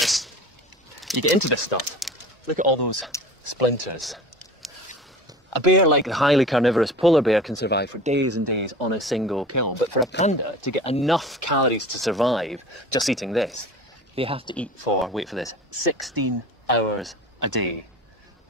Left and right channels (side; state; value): both; normal; correlation 0.39